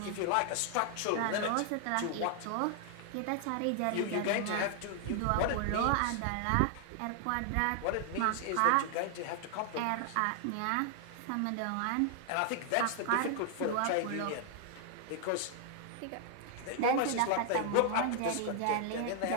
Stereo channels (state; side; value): different; both; correlation 0.00